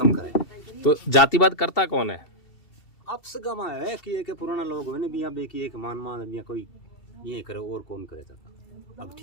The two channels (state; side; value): late; right; 2.7 ms